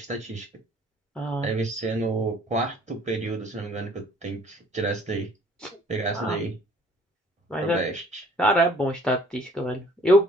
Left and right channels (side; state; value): both; normal; correlation 0.56